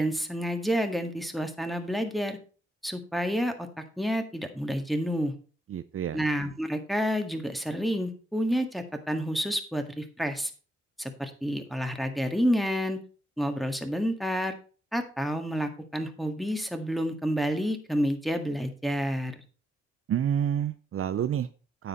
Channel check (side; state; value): both; normal; correlation 0.83